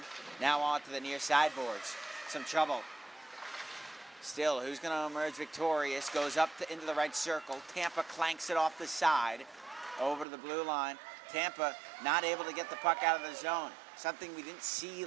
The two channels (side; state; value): left; drops out; at 10.2 s